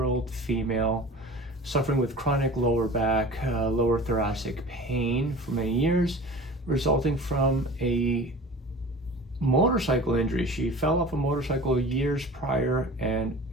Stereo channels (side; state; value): both; normal; correlation 0.38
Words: female suffering with chronic lower back, lower thoracic pain for many years, resulting from a motorcycle injury. She fell off a motorcycle years prior and